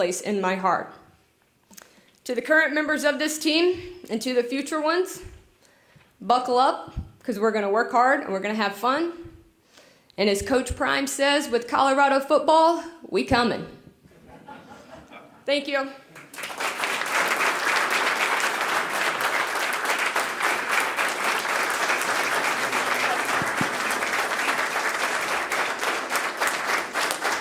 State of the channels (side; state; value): both; identical; correlation 1.00